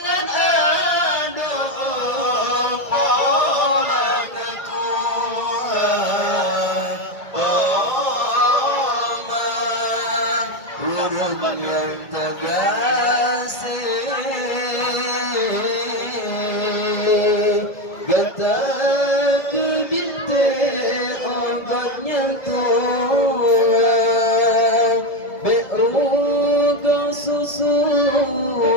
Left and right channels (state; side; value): late; right; 1.7 ms